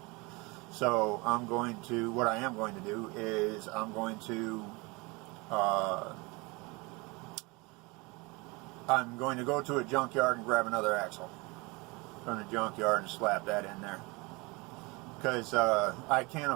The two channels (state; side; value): quieter; left; 26.0 dB